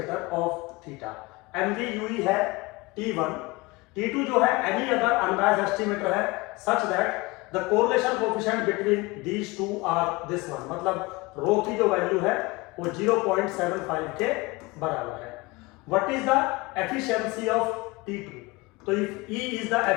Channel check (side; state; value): right; quieter; 23.4 dB